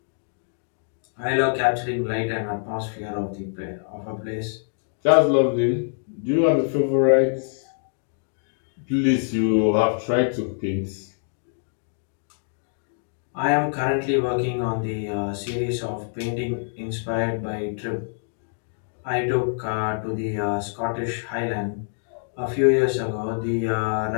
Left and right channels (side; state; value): right; silent; digital silence